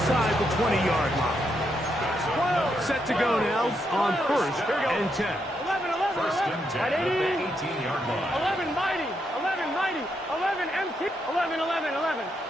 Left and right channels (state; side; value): normal; both; correlation 0.80